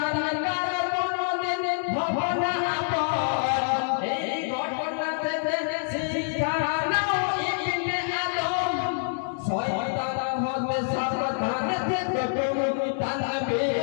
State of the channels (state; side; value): silent; right; digital silence